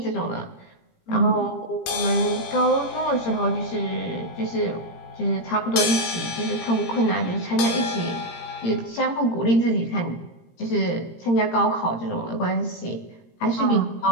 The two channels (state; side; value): late; right; 17 ms